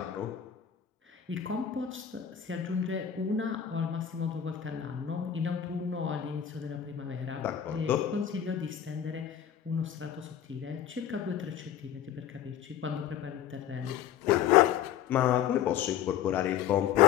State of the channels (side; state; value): right; quieter; 9.5 dB